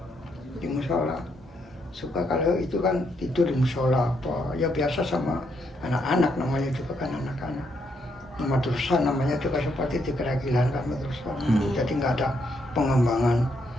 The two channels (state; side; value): normal; both; correlation 0.76